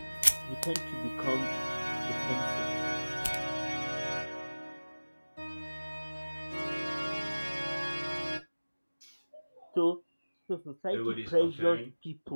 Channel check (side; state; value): both; inverted; correlation -1.00